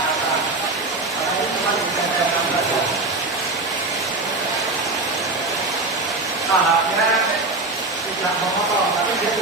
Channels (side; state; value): left; quieter; 3.2 dB